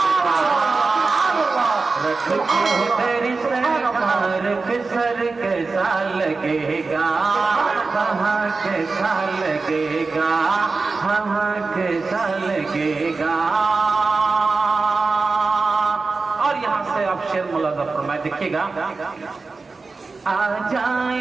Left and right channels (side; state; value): left; quieter; 4.0 dB